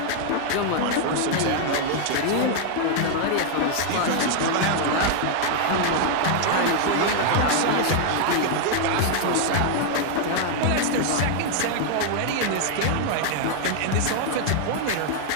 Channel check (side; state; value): both; different; correlation 0.00